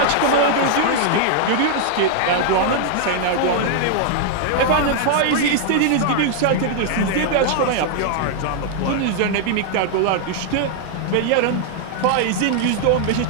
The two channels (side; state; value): both; different; correlation -0.01